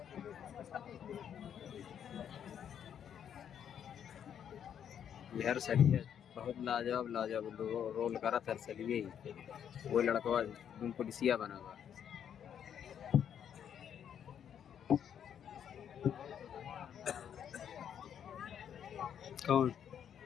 सही है, बहुत लाजवाब लाजवाब रोल करा था सलिए ही। वो लड़का पुलिसिया बना हुआ। कौन?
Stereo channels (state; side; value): quieter; right; 8.8 dB